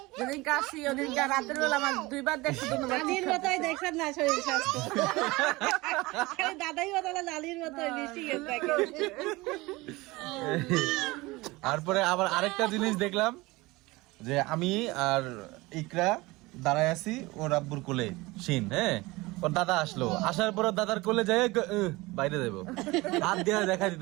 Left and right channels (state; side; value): quieter; left; 21.7 dB